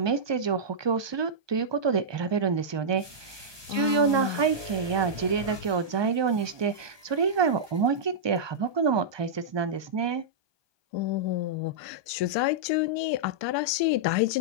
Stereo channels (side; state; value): left; late; 1.2 ms